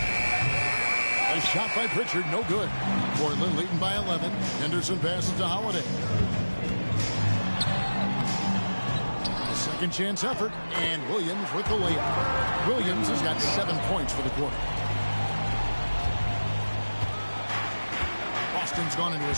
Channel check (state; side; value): inverted; both; correlation -1.00